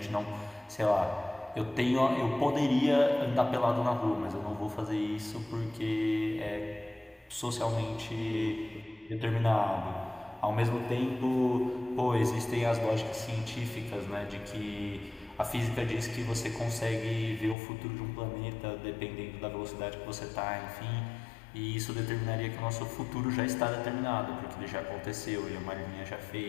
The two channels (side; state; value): right; drops out; at 17.6 s